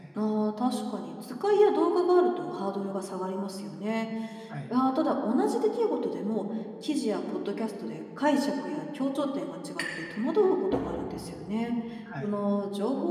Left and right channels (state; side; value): identical; both; correlation 1.00